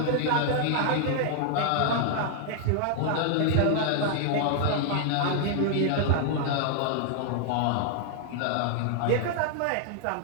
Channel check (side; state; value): both; different; correlation 0.00